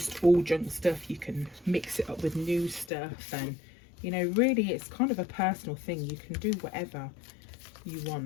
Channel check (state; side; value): drops out; right; at 2.9 s